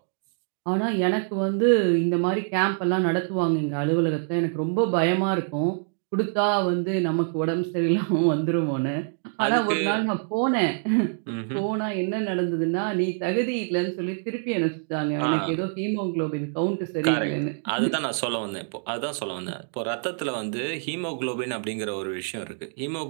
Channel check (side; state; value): left; silent; digital silence